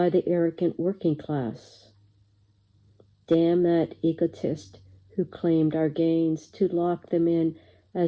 the arrogant working class. Damn that egotist who claimed our gains to lock them in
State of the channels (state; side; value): identical; both; correlation 1.00